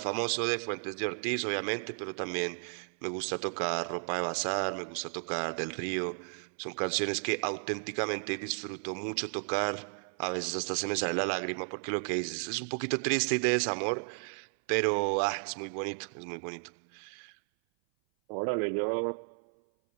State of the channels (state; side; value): silent; left; 56 dB below the other